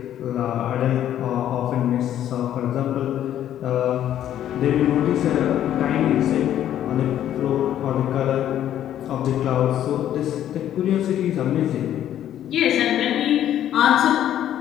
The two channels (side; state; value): right; quieter; 11.2 dB